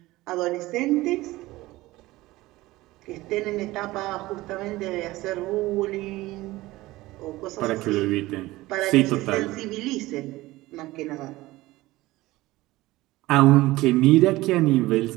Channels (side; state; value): left; quieter; 18.6 dB